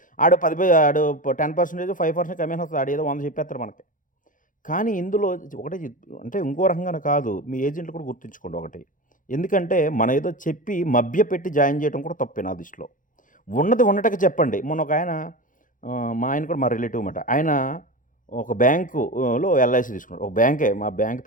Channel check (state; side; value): late; right; 0.38 ms